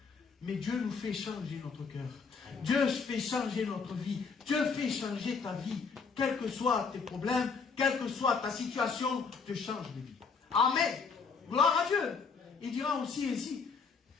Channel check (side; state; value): right; quieter; 5.3 dB